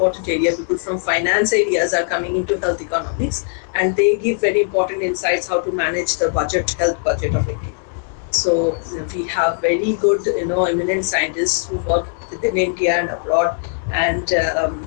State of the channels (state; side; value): silent; right; 66 dB below the other